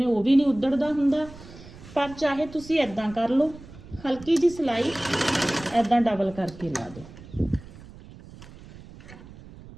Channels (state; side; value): noise; right; rumble, 18 dB below the sound